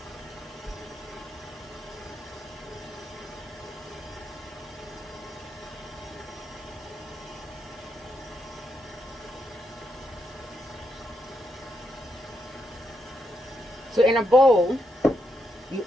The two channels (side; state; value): both; normal; correlation 0.81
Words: So in a bowl, you